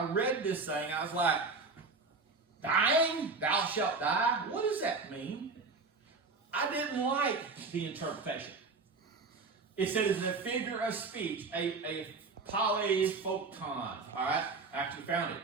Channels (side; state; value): left; quieter; 4.1 dB